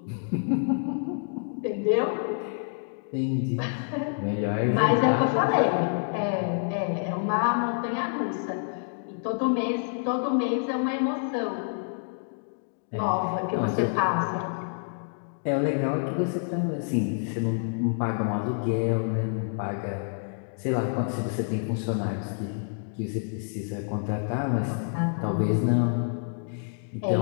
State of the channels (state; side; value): silent; right; digital silence